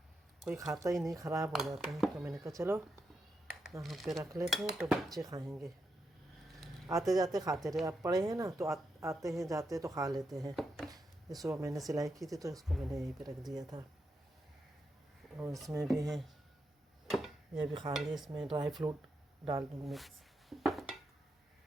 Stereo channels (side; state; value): both; normal; correlation 0.85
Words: कोई खाता ही नहीं, ख़राब हो जाते हैं। तो मैंने कहा चलो यहाँ पे रख लेते हैं तो बच्चे खाएंगे, आते जाते खाते रहे। आप पड़े हैं ना तो आते हैं जाते तो खा लेते हैं। ये सुबह मैंने सिलाई की थी तो इसको मैंने यहीं पे रख दिया था। और इसमें भी है, ये भी खा लिए। इसमें ड्राई फ्रूट डाल दूँगी मिक्स,